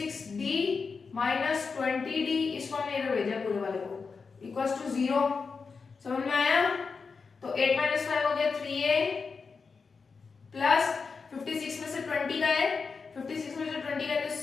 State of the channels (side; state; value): right; quieter; 5.0 dB